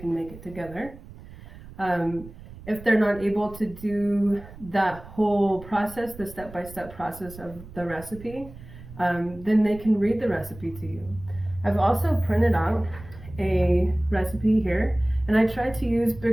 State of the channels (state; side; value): noise; right; rumble, 17 dB below the sound